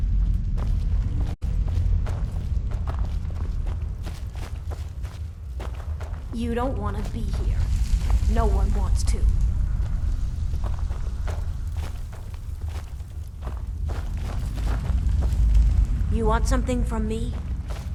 You don't want to be here. No one wants to. You want something from me?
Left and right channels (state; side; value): identical; both; correlation 1.00